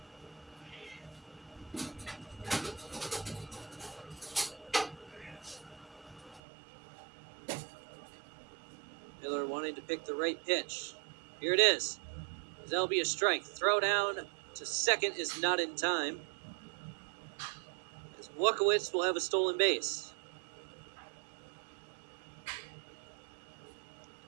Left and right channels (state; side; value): drops out; left; at 6.4 s